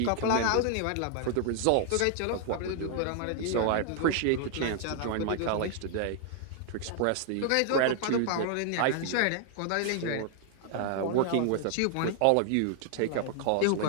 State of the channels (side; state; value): both; different; correlation 0.00